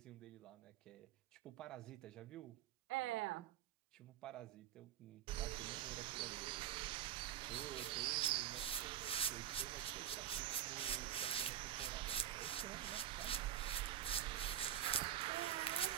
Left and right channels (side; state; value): left; quieter; 10.9 dB